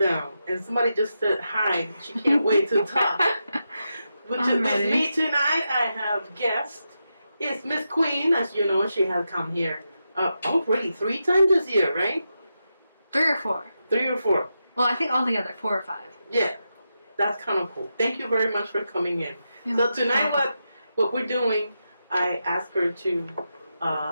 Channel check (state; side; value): inverted; both; correlation -0.87